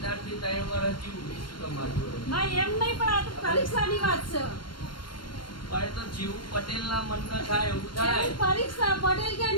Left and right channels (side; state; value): right; late; 0.72 ms